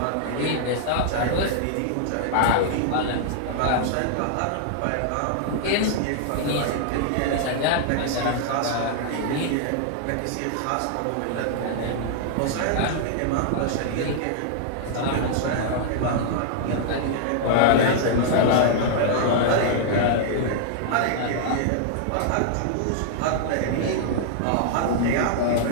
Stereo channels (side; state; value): both; different; correlation -0.01